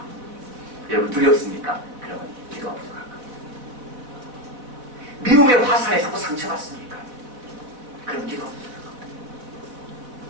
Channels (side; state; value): left; late; 4.0 ms